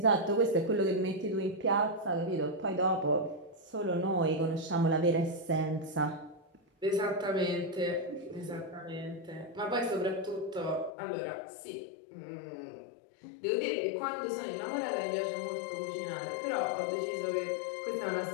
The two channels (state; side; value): drops out; right; at 11.0 s